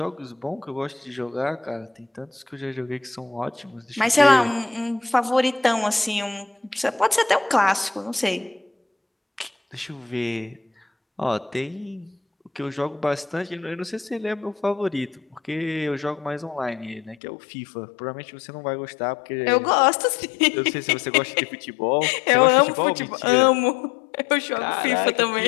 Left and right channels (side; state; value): right; drops out; at 17.2 s